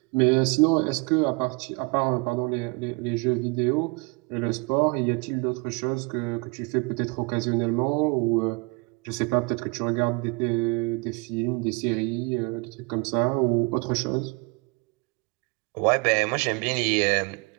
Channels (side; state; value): left; quieter; 30.5 dB